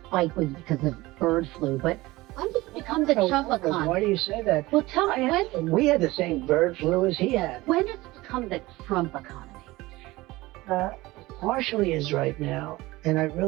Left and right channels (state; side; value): quieter; left; 19.7 dB